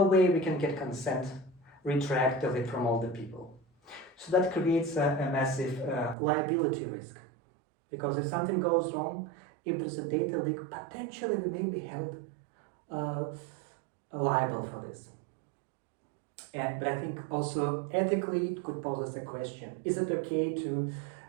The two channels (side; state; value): left; drops out; at 6.2 s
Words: way we can get consent retroactively from all the people. So that creates a massive liability risk, because if something goes wrong, if there's a data leak, potentially we may be held liable for this. But I think also ethically it could pose us a question. Is it okay to